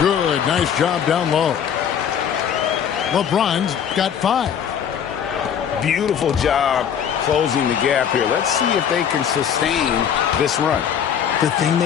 Nice job down low. LeBron's got 5. Beautiful job closing the gap here. Let's see if they can sustain this run. The thing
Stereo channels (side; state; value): right; quieter; 8.4 dB